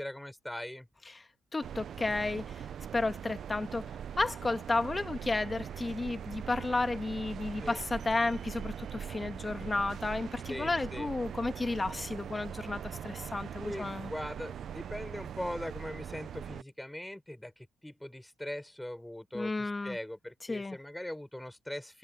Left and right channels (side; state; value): both; normal; correlation 0.93